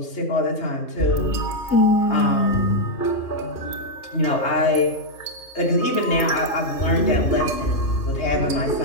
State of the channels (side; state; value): right; late; 3.2 ms